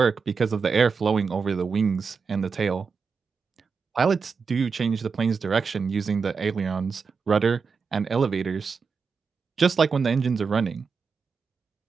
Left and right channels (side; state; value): left; quieter; 5.3 dB